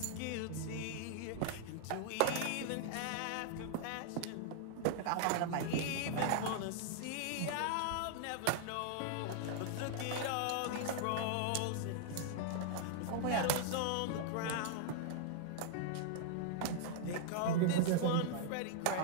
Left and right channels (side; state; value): both; different; correlation -0.01